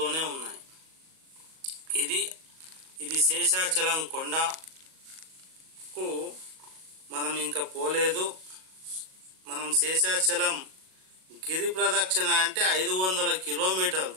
ఉన్నాయి. ఇది శేషాచలం కొండకు మనం ఇంకా పోలేదు. మనం శేషాచలం గిరి ప్రదక్షిణ అంటే 500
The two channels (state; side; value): late; left; 38 ms